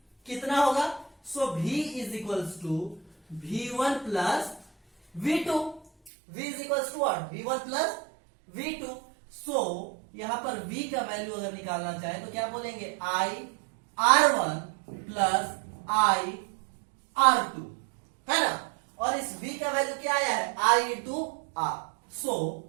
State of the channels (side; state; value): left; drops out; at 6.1 s